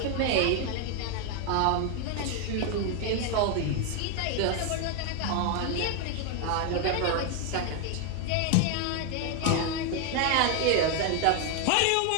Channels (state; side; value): different; both; correlation 0.01